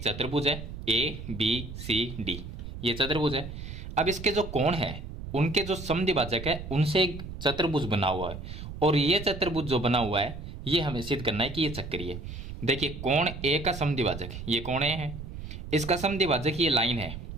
चतुर्भुज है ए बी सी डी, ये चतुर्भुज है। अब इसके जो कोण है उनके जो समद्विभाजक है उनसे एक चतुर्भुज बना हुआ है और ये चतुर्भुज जो बना हुआ है ये हमें सिद्ध करना है कि ये चक्रीय है। देखिए कोण ए का समद्विभाजक ये कोण ए है, इसका समद्विभाजक ये लाइन है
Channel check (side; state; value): right; noise; rumble, 10 dB below the sound